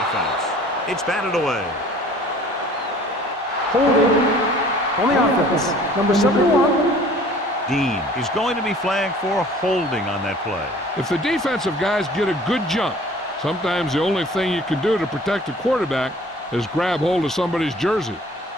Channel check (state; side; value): normal; both; correlation 0.50